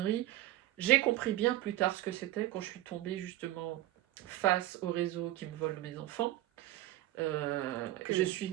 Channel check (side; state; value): left; quieter; 15.5 dB